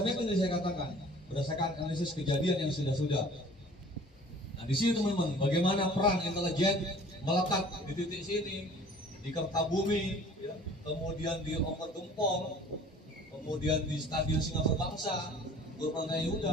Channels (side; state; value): both; normal; correlation 0.48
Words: yang saya katakan berdasarkan analisis kejadian yang sudah-sudah. Nah, di sini teman-teman, bagaimana peran intelijen melekat di titik sini, di Kertabumi, ya, kemudian di Oper Gempol, kemudian di Stadion Singapura Bangsa, Purbalingga